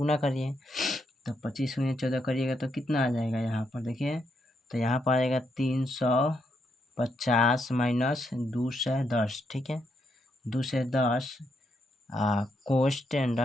करिए, तो 25 × 14 करिएगा तो कितना आ जाएगा यहाँ पर देखिए, तो यहाँ पर आएगा 350 माइनस 210, ठीक है। 210 कोष्ट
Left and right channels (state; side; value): normal; both; correlation 0.79